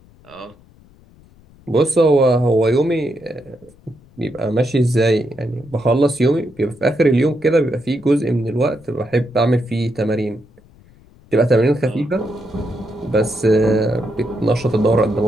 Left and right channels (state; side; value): noise; left; rumble, 27 dB below the sound